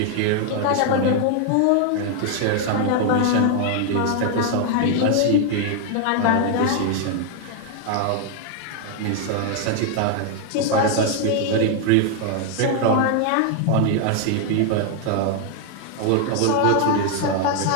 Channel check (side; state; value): both; different; correlation 0.00